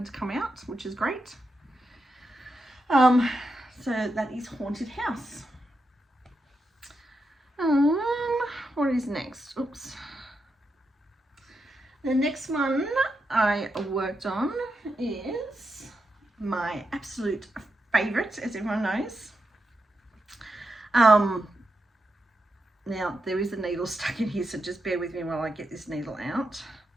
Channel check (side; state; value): both; normal; correlation 0.86